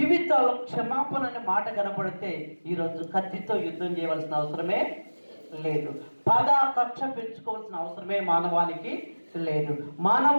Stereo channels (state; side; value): inverted; both; correlation -1.00